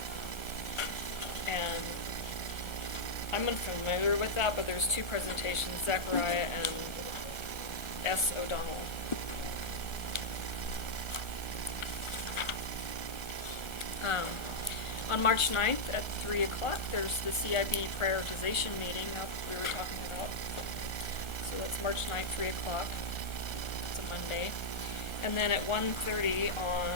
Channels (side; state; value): right; late; 1.3 ms